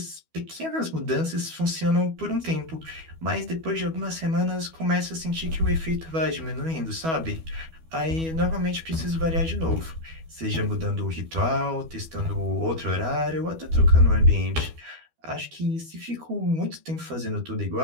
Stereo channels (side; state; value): left; late; 12 ms